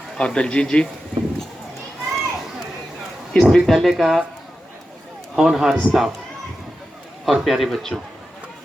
और दलजीत जी, इस विद्यालय का होनहार स्टाफ और प्यारे बच्चों।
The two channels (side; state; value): both; normal; correlation 0.91